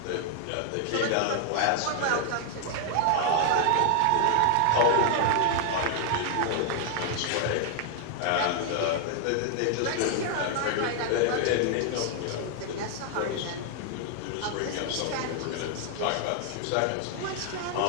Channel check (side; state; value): both; different; correlation 0.00